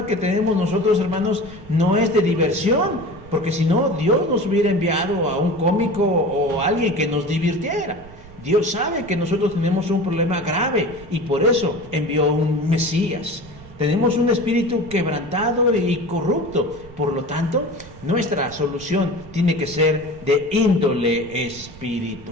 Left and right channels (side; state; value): right; noise; rumble, 19 dB below the sound